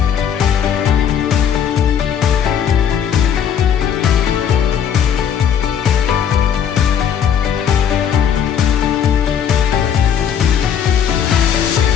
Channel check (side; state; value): right; quieter; 8.4 dB